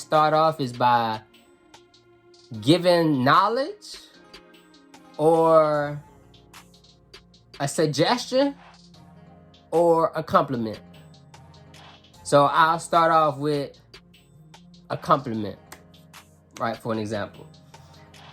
off is by giving knowledge or a suggestion or a compliment. So I'll start off with a compliment, right? For an example,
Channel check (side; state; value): both; identical; correlation 1.00